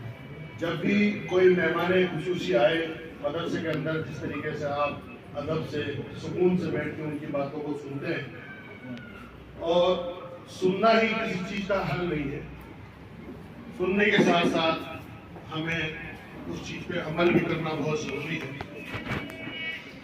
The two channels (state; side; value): identical; both; correlation 1.00